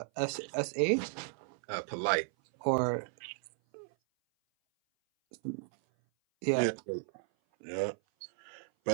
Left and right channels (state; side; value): silent; left; 55 dB below the other